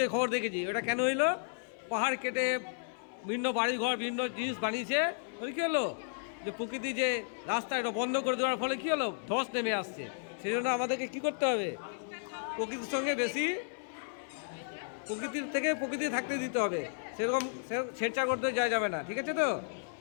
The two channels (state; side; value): silent; right; 56 dB below the other